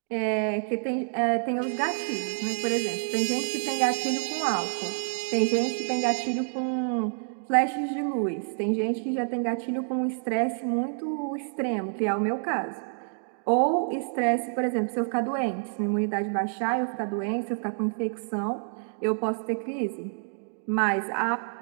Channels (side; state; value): left; silent; digital silence